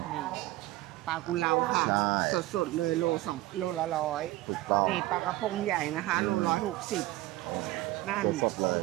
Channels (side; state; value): left; quieter; 17.2 dB